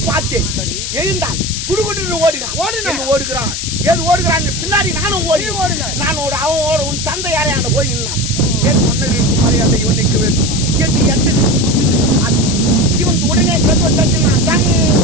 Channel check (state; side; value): noise; left; hiss, 4 dB below the sound